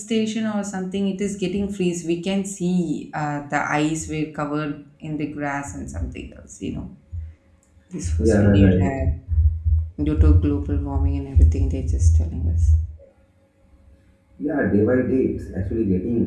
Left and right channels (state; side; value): identical; both; correlation 1.00